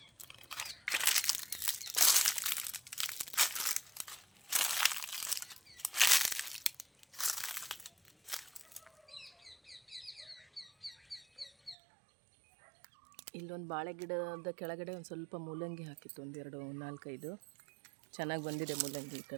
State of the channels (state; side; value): drops out; left; at 11.8 s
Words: ಇಲ್ಲೊಂದು ಬಾಳೆ ಗಿಡದ ಕೆಳಗಡೆ ಒಂದು ಸ್ವಲ್ಪ ಮೂಲಂಗಿ ಹಾಕಿತ್ತು. 4-5 ಚೆನ್ನಾಗಿ ಬಂದಿದೆ ಮೂಲಂಗಿ. ಈ